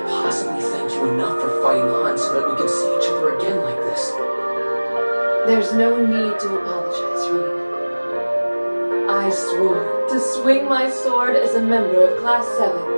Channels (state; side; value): inverted; both; correlation -1.00